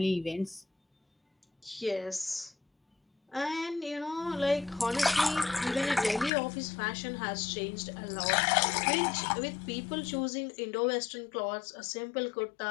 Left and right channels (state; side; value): drops out; right; at 6.3 s